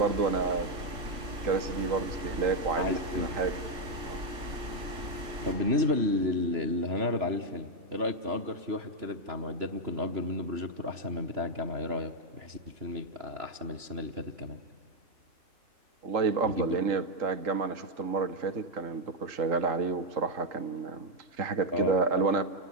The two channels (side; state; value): left; late; 3.0 ms